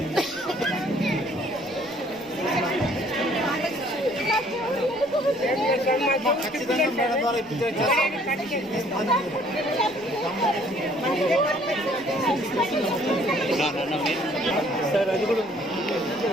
సార్ అది కూడా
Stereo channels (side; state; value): left; noise; rumble, 29 dB below the sound